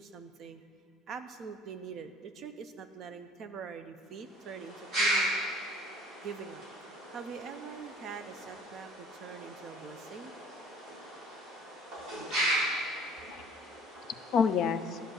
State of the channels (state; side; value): normal; both; correlation 0.52